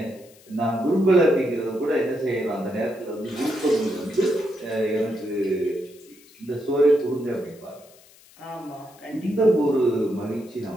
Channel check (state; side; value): noise; left; hiss, 26 dB below the sound